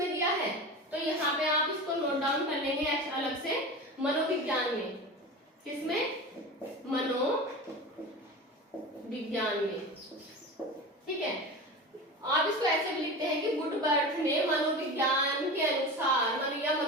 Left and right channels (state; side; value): normal; both; correlation 0.30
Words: दिया है, तो यहाँ पे आप इसको नोट डाउन कर लेंगे अलग से, मनोविज्ञान में। किसमें, मनोविज्ञान में। ठीक है, आप इसको ऐसे भी लिखते हैं कि वुडवर्थ ने मनोविज्ञान के अनुसार या